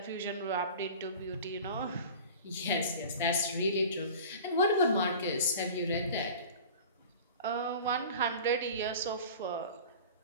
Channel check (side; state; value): both; inverted; correlation -0.39